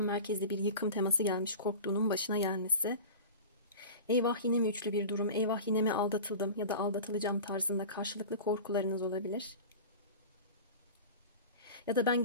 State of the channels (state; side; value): inverted; both; correlation -0.34